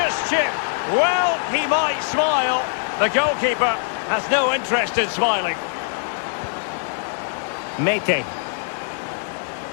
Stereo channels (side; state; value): right; silent; digital silence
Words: chip. Well, he might smile. The goalkeeper has no interest in smiling. Mete.